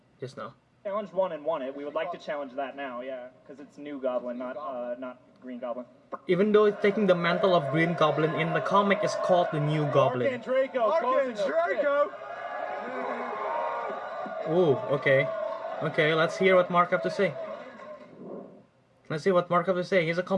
Just now. Challenged one and won it. We would like to challenge that now, yeah, because it's new goblin, not Green Goblin. Even though it's taking the mantle of Green Goblin, in the comic it's called the New Goblin. Arcan Draco. Ooh, okay. Okay, let's hear what Mark have to say. Let's see what Mark have to say. He's a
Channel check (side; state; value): both; identical; correlation 1.00